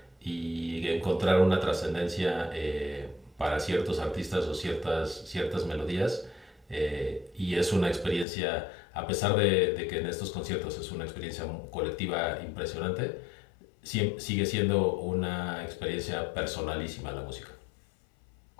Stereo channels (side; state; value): right; drops out; at 8.2 s